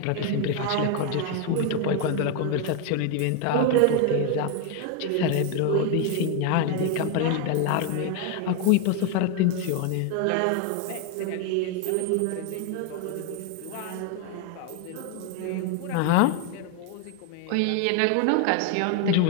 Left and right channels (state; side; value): different; both; correlation 0.01